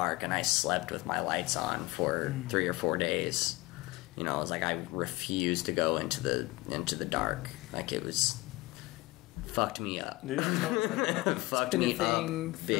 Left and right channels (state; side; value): quieter; right; 21.1 dB